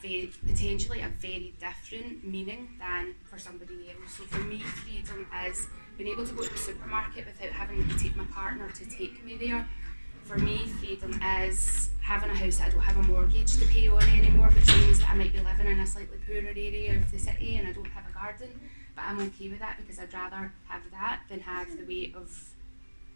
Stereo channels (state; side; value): inverted; both; correlation -1.00